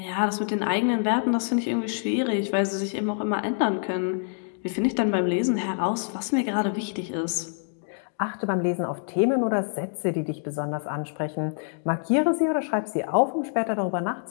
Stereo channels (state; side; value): silent; right; 61 dB below the other